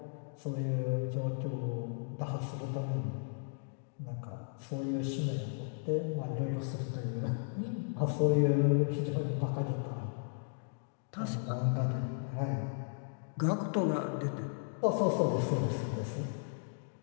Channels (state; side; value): silent; right; digital silence